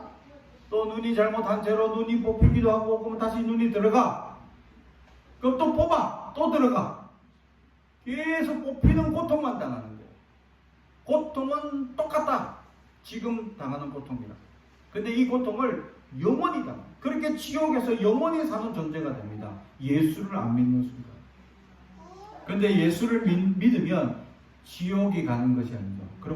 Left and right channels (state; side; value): identical; both; correlation 1.00